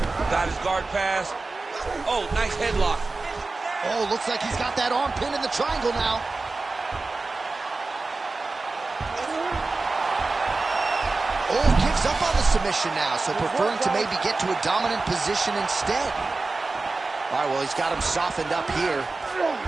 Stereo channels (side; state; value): left; quieter; 3.6 dB